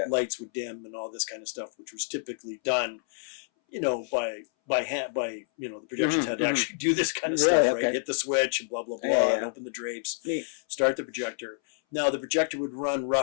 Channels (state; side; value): silent; right; 59 dB below the other